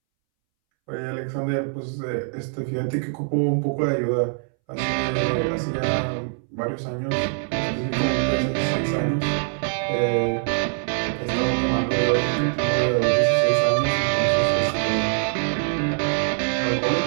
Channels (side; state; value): left; silent; 63 dB below the other